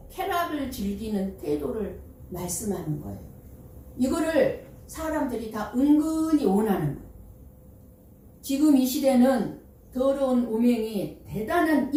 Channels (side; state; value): both; identical; correlation 1.00